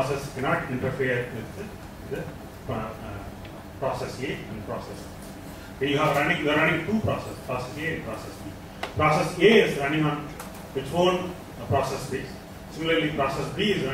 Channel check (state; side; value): identical; both; correlation 1.00